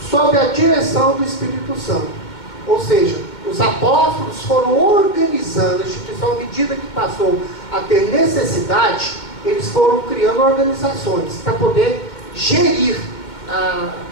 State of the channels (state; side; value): late; right; 2.2 ms